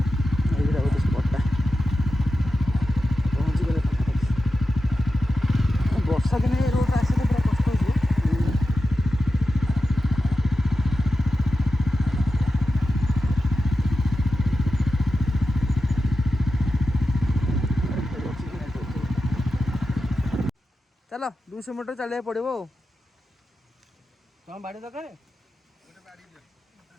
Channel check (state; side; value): normal; both; correlation 0.91